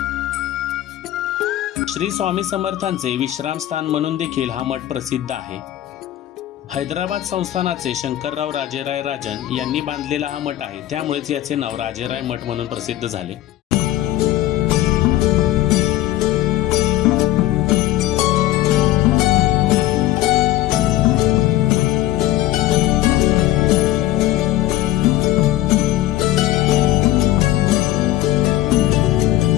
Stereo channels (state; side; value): quieter; right; 14.6 dB